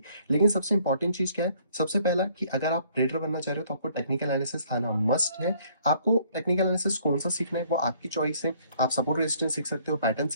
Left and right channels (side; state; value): both; inverted; correlation -0.62